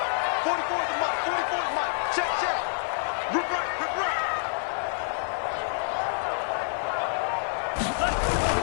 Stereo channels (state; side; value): silent; right; digital silence